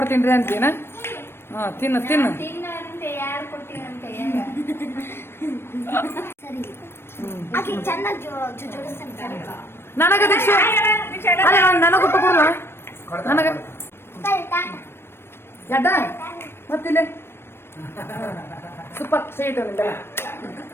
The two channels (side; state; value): right; late; 0.12 ms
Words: ಅಂತೀನ. ಹಾ ತಿನ್ನು ತಿನ್ನು. ತಿನ್ನಂತೆ ಯಾರು ಕೊಡ್ತೀನಂತೆ ಆಕೆ ಚೆನ್ನಾಗಿ ಜೋಡಿಸ್ತಾನೆ. ನನಗ ದೀಕ್ಷೆ ನನಗ ಊಟ ಕೊಡುವ ನನಗ ಎಡ್ಡ ಮತ್ತಿಲ್ಲ ಸೂಪರ್ ಸ್ವೀಟ್